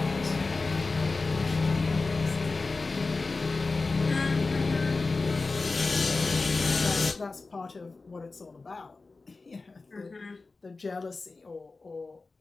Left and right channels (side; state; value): right; quieter; 3.8 dB